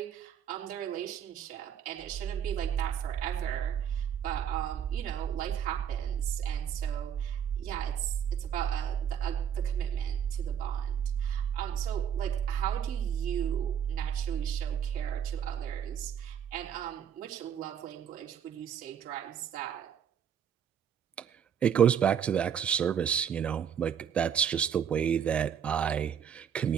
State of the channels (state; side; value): quieter; left; 8.5 dB